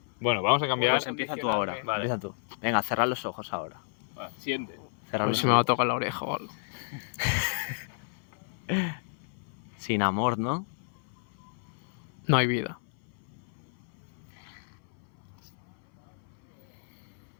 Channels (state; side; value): silent; right; 57 dB below the other